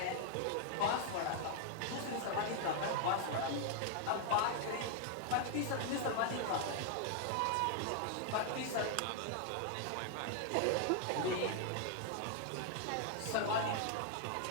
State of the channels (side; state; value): both; different; correlation 0.00